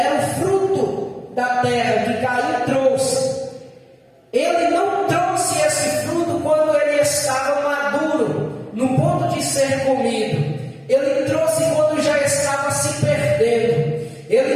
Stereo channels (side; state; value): both; identical; correlation 1.00